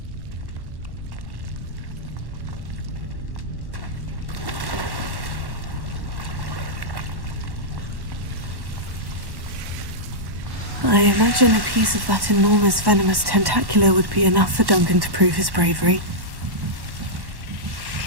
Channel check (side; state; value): left; late; 1.1 ms